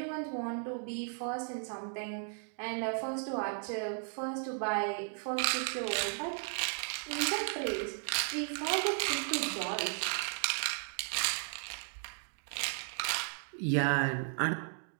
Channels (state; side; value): silent; left; 54 dB below the other